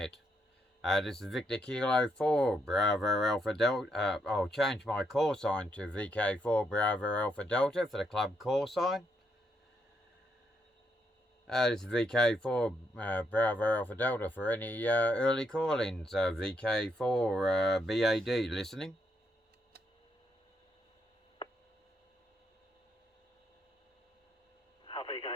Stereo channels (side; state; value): both; normal; correlation 0.77